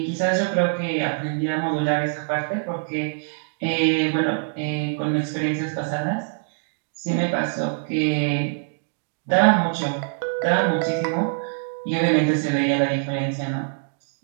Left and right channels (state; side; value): silent; left; digital silence